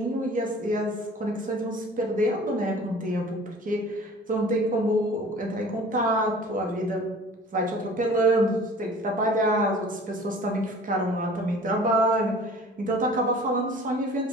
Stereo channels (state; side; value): normal; both; correlation 0.46